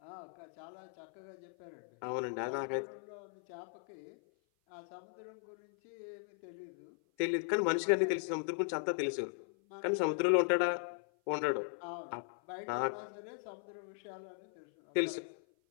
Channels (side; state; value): right; silent; 52 dB below the other